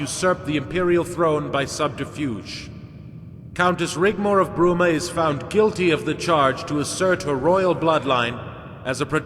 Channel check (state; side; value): identical; both; correlation 1.00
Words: the imperial throne by subterfuge. Countess Rigmor of Bruma is found guilty of the charge to assert her royal bloodline as a